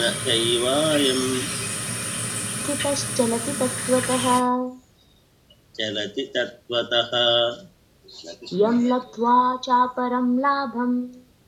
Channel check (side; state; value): both; identical; correlation 1.00